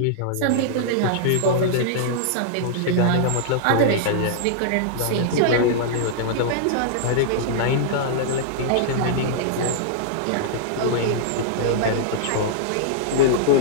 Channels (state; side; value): different; both; correlation -0.02